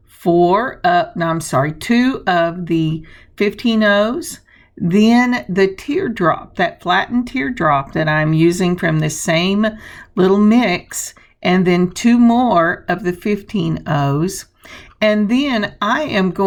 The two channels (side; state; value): both; identical; correlation 1.00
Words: two of the 15/0s, then the teardrop, that flattened teardrop that I'm using from the same little mix, and then 2 more of the 15/0s. And then I am